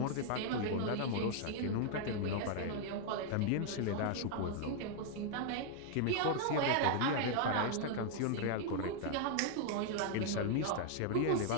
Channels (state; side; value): different; both; correlation 0.00